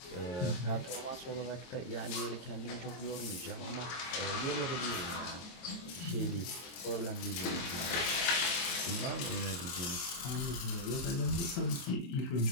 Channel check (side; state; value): right; late; 23 ms